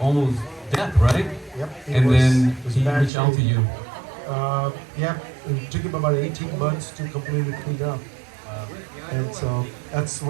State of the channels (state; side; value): drops out; left; at 3.1 s